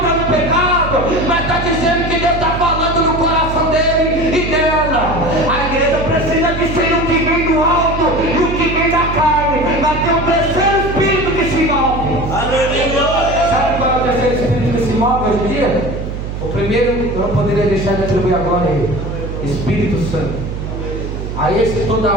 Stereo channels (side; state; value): right; noise; hum, 6 dB below the sound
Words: no pecado, mas está dizendo que Deus está falando no coração dele e dela. A igreja precisa discernir o que vem do alto e o que vem da carne, mas tem um terceiro espírito que se move. Sabe qual é o terceiro espírito que se move hoje em dia? O primeiro eu não poderia deixar de atribuir a glória a ele: Espírito Santo. A esse toda